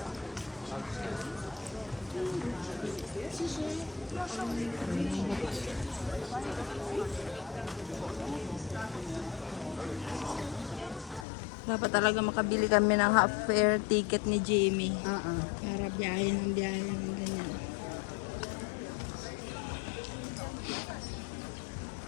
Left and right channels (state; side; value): drops out; right; at 11.2 s